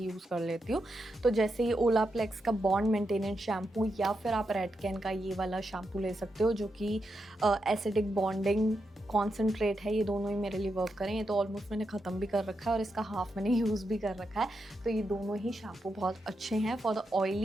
यूज़ कर लेती हूँ। तो जैसे ये ओलाप्लेक्स का बॉन्ड मेंटेनेंस शैम्पू, या फिर आप रेडकेन का ये वाला शैम्पू ले सकते हो जो कि एसिडिक बॉन्डिंग कॉन्सेंट्रेट है। ये दोनों ही मेरे लिए वर्क करें। ये तो ऑलमोस्ट मैंने ख़त्म भी कर रखा है और इसका हाफ मैंने यूज़ भी कर रखा है। तो ये दोनों ही शैम्पू बहुत अच्छे हैं for the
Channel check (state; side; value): normal; both; correlation 0.85